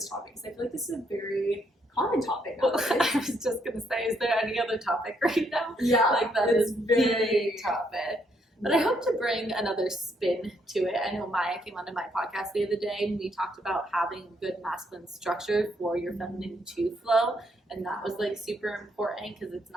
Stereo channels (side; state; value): both; normal; correlation 0.73